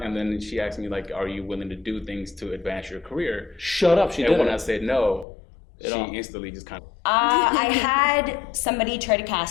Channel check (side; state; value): right; drops out; at 5.2 s